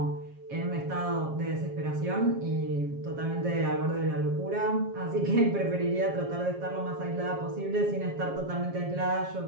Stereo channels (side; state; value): left; late; 7.4 ms